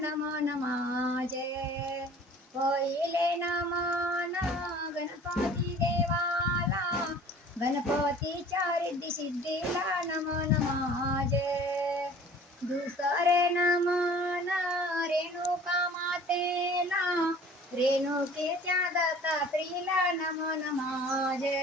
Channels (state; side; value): normal; both; correlation 0.47